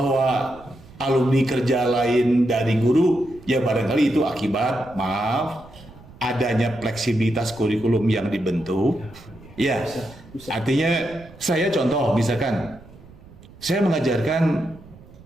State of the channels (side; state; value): right; noise; rumble, 22 dB below the sound